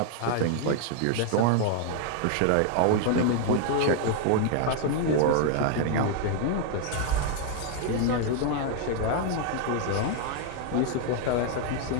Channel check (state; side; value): different; both; correlation 0.00